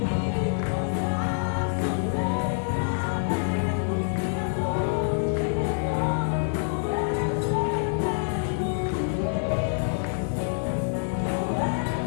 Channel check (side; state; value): right; silent; digital silence